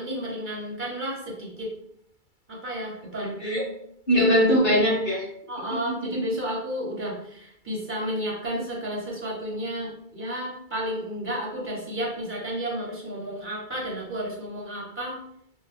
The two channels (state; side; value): late; right; 2.3 ms